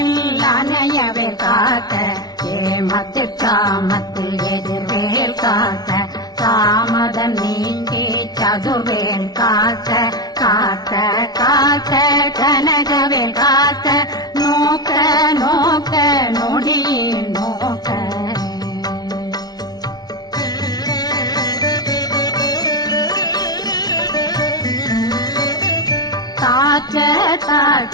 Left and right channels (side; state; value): right; late; 0.19 ms